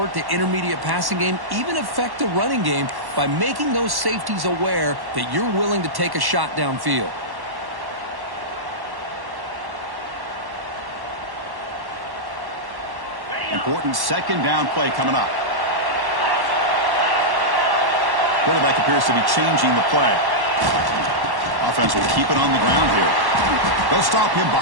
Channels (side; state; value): left; late; 1.1 ms